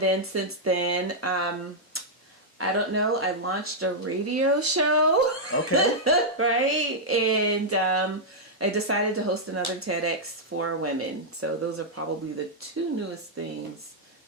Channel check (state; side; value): normal; both; correlation -0.06